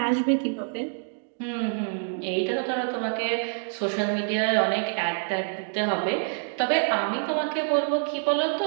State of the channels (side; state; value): left; silent; digital silence